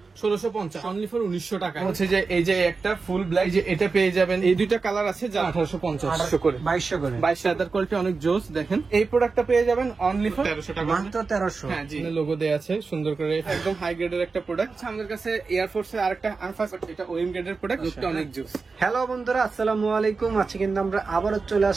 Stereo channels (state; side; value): quieter; left; 4.4 dB